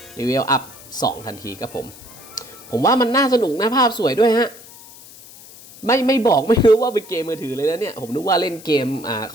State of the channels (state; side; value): noise; left; hiss, 19 dB below the sound